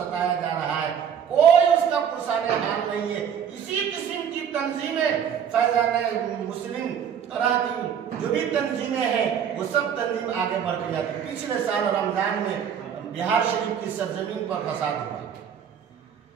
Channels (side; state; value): left; quieter; 8.2 dB